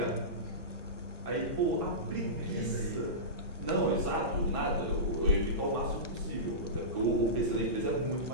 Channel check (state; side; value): late; right; 1.0 ms